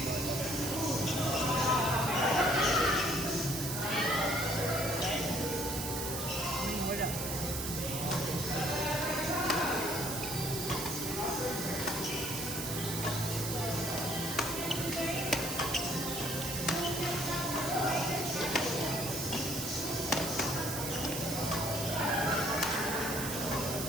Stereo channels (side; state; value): right; noise; hiss, 4 dB below the sound